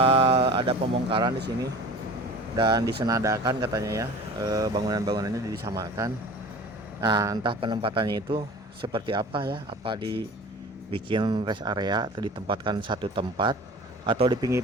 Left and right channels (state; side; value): normal; both; correlation 0.40